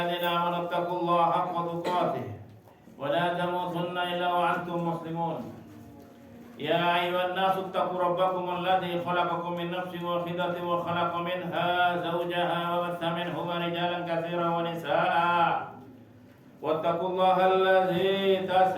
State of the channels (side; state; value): both; identical; correlation 1.00